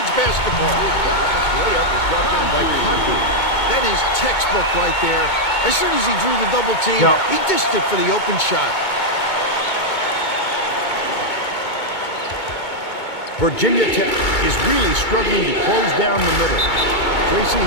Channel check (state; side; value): late; right; 2.2 ms